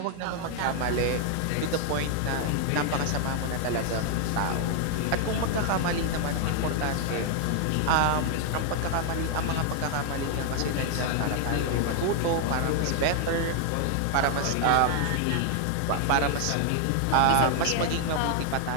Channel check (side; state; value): both; different; correlation 0.00